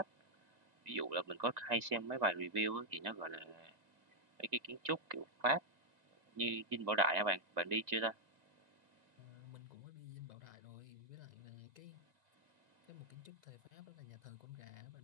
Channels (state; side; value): late; left; 1.9 ms